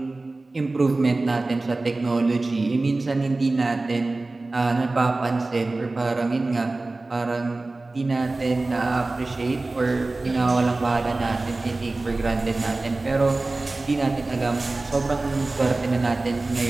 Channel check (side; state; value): left; quieter; 3.2 dB